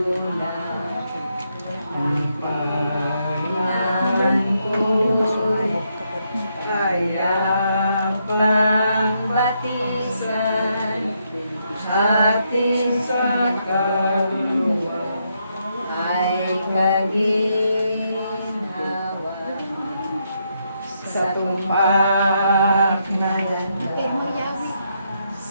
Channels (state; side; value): inverted; both; correlation -0.78